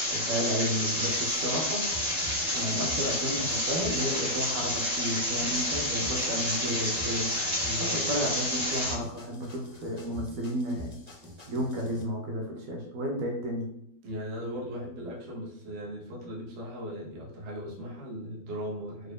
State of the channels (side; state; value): left; late; 12 ms